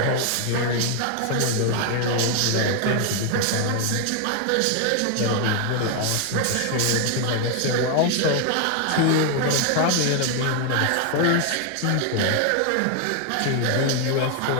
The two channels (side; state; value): both; different; correlation 0.01